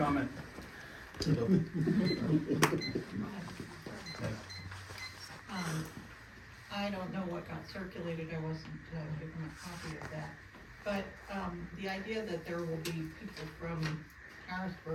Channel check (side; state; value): both; identical; correlation 1.00